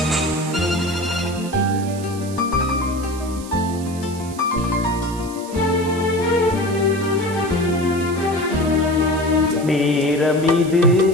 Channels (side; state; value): right; noise; hiss, 16 dB below the sound